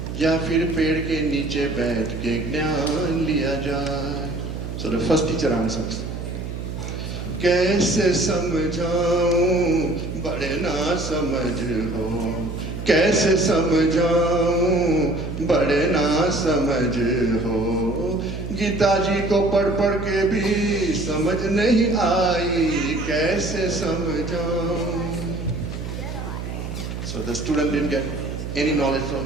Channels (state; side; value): noise; right; hum, 7 dB below the sound